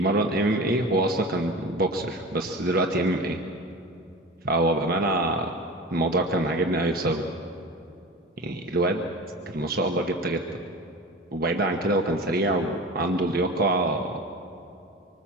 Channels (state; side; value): normal; both; correlation 0.32